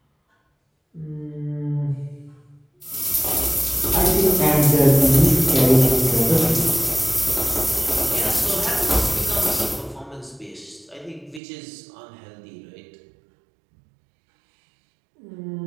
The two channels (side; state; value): left; drops out; at 11.4 s